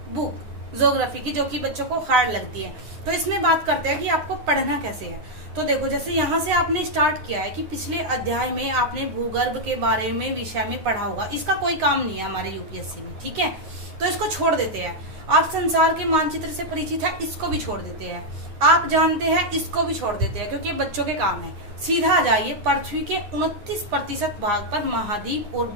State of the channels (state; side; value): late; left; 9.7 ms